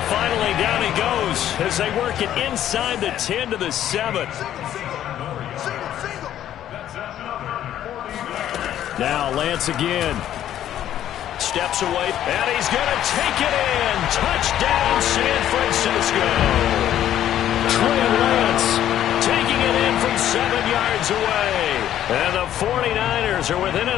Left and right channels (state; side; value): quieter; right; 11.4 dB